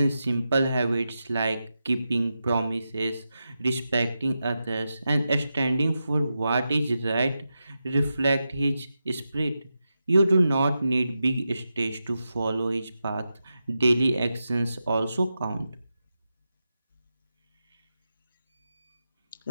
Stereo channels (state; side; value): inverted; both; correlation -0.89